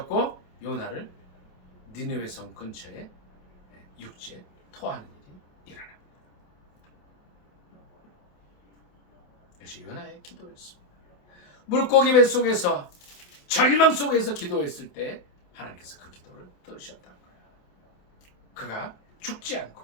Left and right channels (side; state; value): right; late; 28 ms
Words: 요나를 니느웨 성 근처에 육지에 토하는 일이 일어납니다. 이것이 요나의 기도였습니다. 물고기 뱃속에서 절망 속에서 기도했을 때 하나님께서 그 기도를 들으셨다는 거예요. 그가 죽지